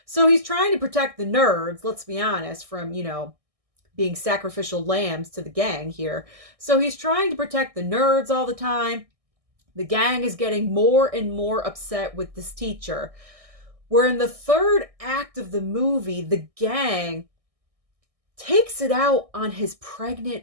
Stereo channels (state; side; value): late; left; 1.6 ms